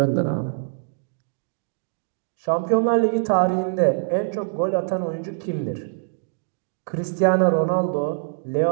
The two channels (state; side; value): silent; left; digital silence